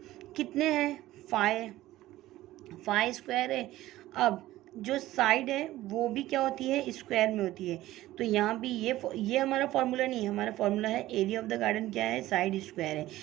कितने हैं, 5 स्क्वायर है। अब जो साइड है वो भी क्या होती है, स्क्वायर में होती है। तो यहाँ भी ये हमारा फॉर्मूला नहीं है, हमारा फॉर्मूला है एरिया ऑफ द गार्डन क्या है, साइड स्क्वायर है।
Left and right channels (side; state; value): left; quieter; 15.8 dB